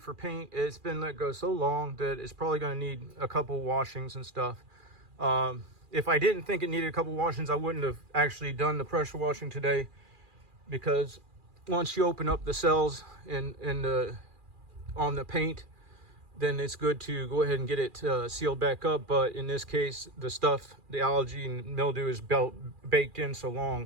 paint. It's been let go so long that it's probably going to need a couple washings and stuff. If I didn't think it needed a couple washings, I wouldn't have actually done the pressure washing today, because once you open up the cells on the paint, then it's good to go ahead and get it sealed back up. But in this case, the algae and mildew is baked in so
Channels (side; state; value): left; late; 2.4 ms